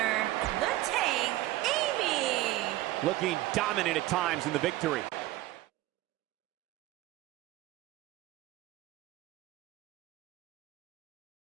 the Tank, Amy. Looking dominant at times in the victory.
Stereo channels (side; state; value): left; quieter; 16.5 dB